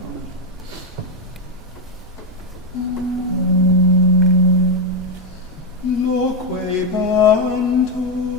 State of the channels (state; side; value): normal; both; correlation 0.04